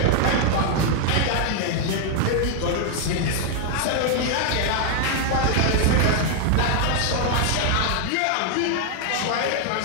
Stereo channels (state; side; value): different; both; correlation 0.00